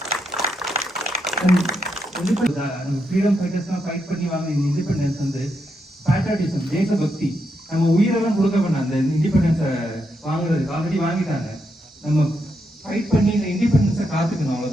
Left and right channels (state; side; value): normal; both; correlation 0.82